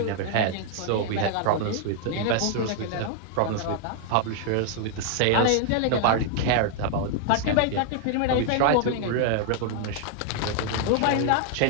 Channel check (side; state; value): both; different; correlation 0.00